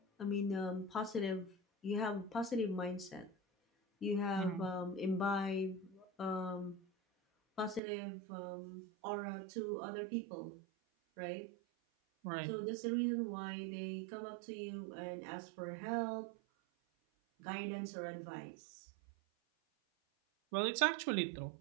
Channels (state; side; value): drops out; left; at 7.8 s